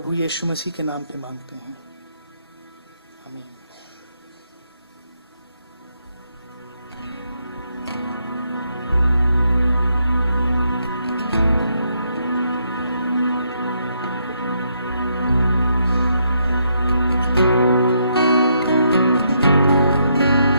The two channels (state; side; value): inverted; both; correlation -0.76